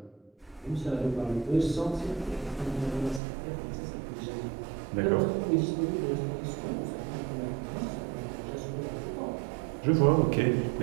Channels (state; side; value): drops out; left; at 3.2 s